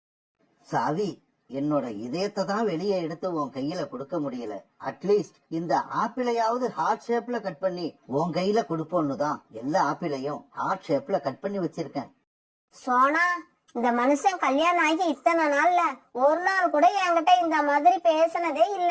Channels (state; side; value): identical; both; correlation 1.00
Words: சாவி, என்னோட இதயத்தை தான் வெளியே எடுத்து உன் கையில கொடுக்க முடியல. அட்லீஸ்ட் இந்த ஆப்பிளையாவது ஹார்ட் ஷேப்ல கட் பண்ணி உன் கையில கொடுப்போன்னு தான் எல்லா ஆப்பிளையும் ஹார்ட் ஷேப்ல கட் பண்ணி வச்சிருக்கேன். சோனா, இந்த மனுஷன் கல்யாணம் ஆகி இத்தனை நாள்ல ஒரு நாள் கூட என்கிட்ட இந்த மாதிரி பேசினதே